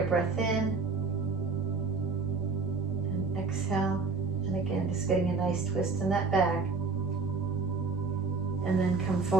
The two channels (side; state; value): left; quieter; 4.2 dB